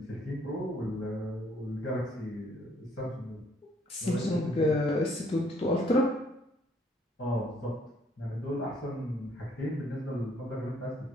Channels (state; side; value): normal; both; correlation 0.65